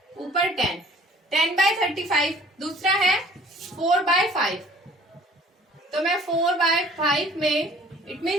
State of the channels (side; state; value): both; normal; correlation 0.52